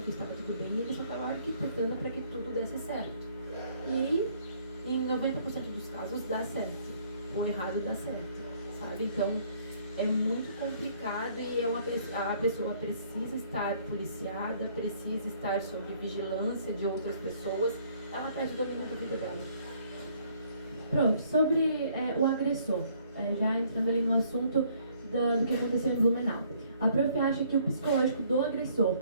que estava tudo bem e ele só tava arquitetando para que tudo desse certo. E em 90% dos casos dá certo. O errado dá certo, sabe? Então é muito complicado e a pessoa precisa estar policiada, precisa estar sob vigilância de outras pessoas. Ela perde o domínio da vida dela. Prof, sobre o agressor, já entrando ali no assunto do que aconteceu em Blumenau. A Prof acha que o psicológico do agressor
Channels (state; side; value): inverted; both; correlation -0.63